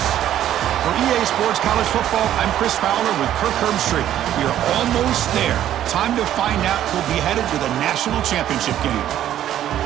For EA Sports College Football, I'm Chris Fowler with Kirk Herbstreit. We are almost there. Time to find out who'll be headed to the national championship game.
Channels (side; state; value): left; quieter; 11.7 dB